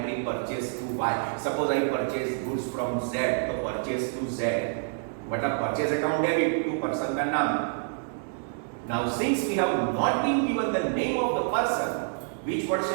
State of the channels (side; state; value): left; silent; 60 dB below the other